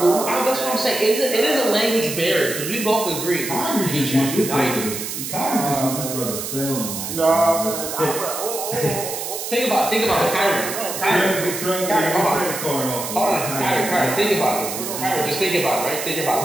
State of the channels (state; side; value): noise; right; hiss, 6 dB below the sound